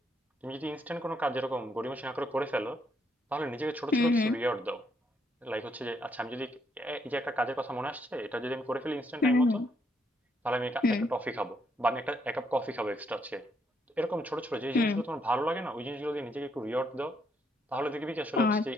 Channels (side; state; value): both; normal; correlation 0.73